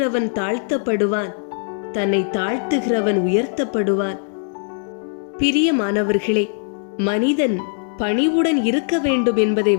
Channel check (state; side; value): silent; right; digital silence